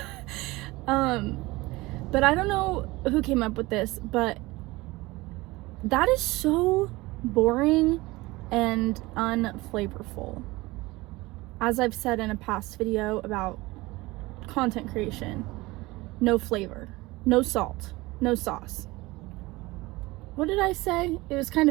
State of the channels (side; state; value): left; quieter; 21.1 dB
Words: But I don't know who came up with this, but that is so boring and unflavorful. As I've said in a past video about content creation, no flavor, no salt, no sauce. What did I say? It was kind